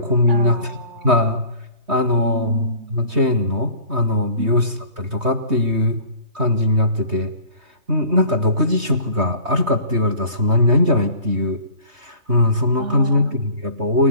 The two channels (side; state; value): left; late; 3.2 ms